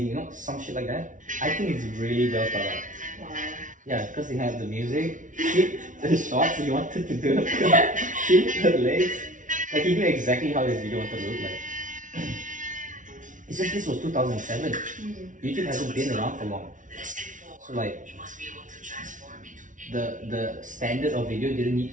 You know, some shit like that. I think it's really well thought out. Wow. Yeah, because they have the music, keep the shots he wanted to do, keep the legs. Like he knew exactly how this video wanted to look like. It's just this was 2007. YouTube hasn't been around for long. So like the standard of video didn't need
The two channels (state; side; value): late; left; 0.37 ms